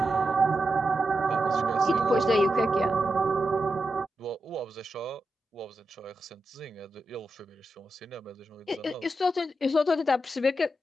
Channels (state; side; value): normal; both; correlation 0.88